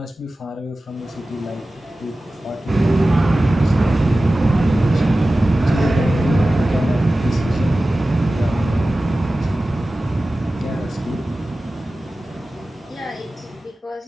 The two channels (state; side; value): normal; both; correlation 0.96